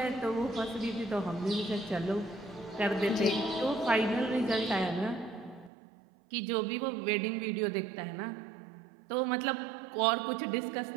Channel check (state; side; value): drops out; left; at 5.7 s